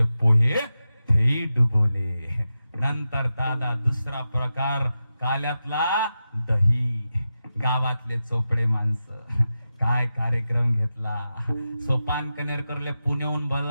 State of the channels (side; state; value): both; inverted; correlation -0.91